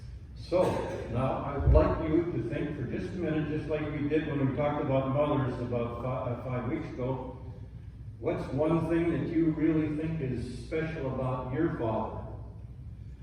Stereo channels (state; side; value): identical; both; correlation 1.00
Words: So, now I would like you to think for just a minute, just like we did when we talked about mothers about 5 weeks ago. What's one thing that you really think is special about your father?